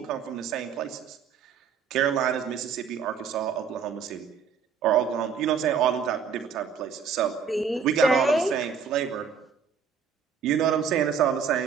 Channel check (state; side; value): quieter; left; 6.5 dB